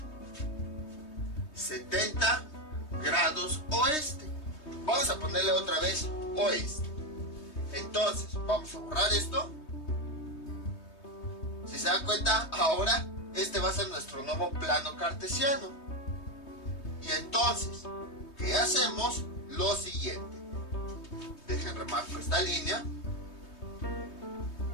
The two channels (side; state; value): right; late; 3.2 ms